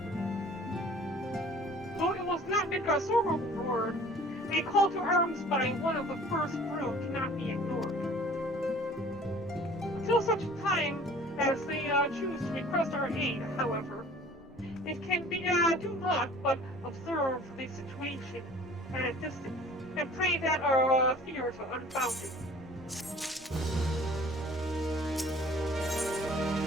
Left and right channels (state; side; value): normal; both; correlation 0.49